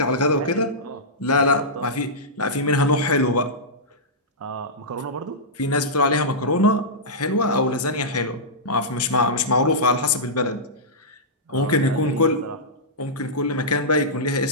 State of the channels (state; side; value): normal; both; correlation -0.13